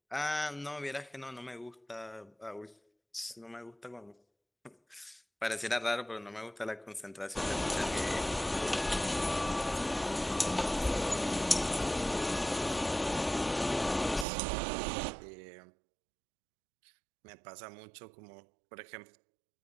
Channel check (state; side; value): drops out; left; at 14.2 s